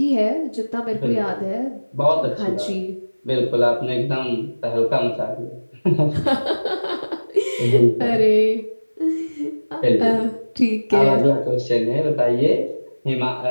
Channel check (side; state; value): both; inverted; correlation -1.00